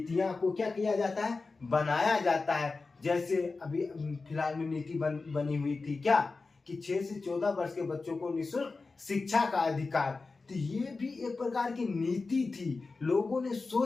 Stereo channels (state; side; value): quieter; right; 4.0 dB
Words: को क्या किया जाता है, बनाया जाता है। जैसे अभी फिलहाल में नीति बनी हुई थी क्या, कि 6 से 14 वर्ष के बच्चों को निःशुल्क शिक्षा का अधिकार, तो ये भी एक प्रकार की नीति थी। लोगों ने